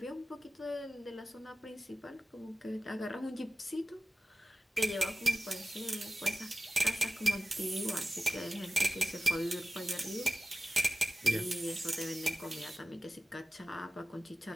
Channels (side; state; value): both; normal; correlation 0.95